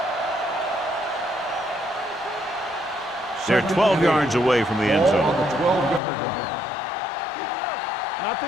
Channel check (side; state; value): right; drops out; at 6.0 s